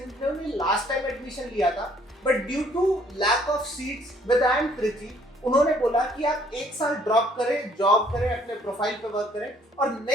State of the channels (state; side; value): normal; both; correlation 0.62